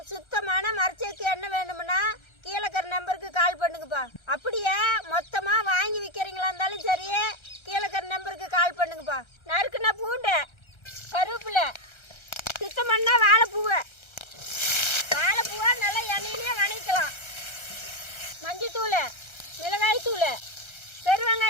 சுத்தமான மரச்சேக்கு எண்ணெய் வேணும்னா கீழே இருக்கிற நம்பருக்கு கால் பண்ணுங்கப்பா. அப்படியே மொத்தமாக வாங்கி விற்கிறீங்களா இருந்தாலும் சரி, கீழே இருக்கிற நம்பருக்கு கால் பண்ணுங்கப்பா. நறுக்குன்னா பூண்டு, கருவேப்பிலை, சுத்தம் பண்ணால் வாழைப்பூவை நல்லா எண்ணெயிலே வணக்கலாம். மஞ்சத்தூள், மிளகாய்த்தூள்,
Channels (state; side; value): late; right; 1.3 ms